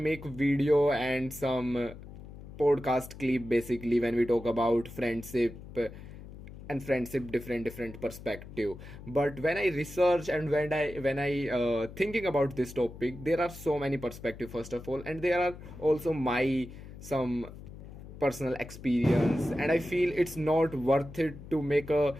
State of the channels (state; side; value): noise; left; hum, 14 dB below the sound